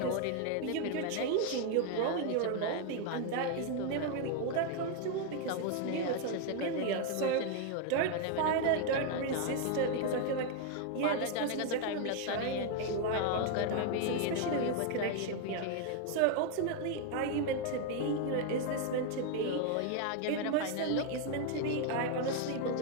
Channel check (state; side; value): different; both; correlation 0.01